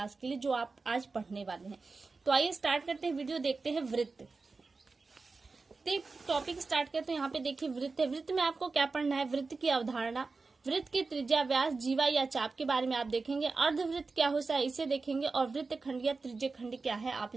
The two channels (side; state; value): left; quieter; 4.1 dB